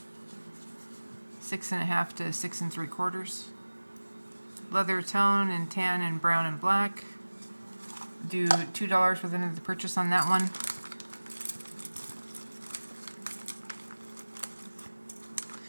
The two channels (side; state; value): both; inverted; correlation -1.00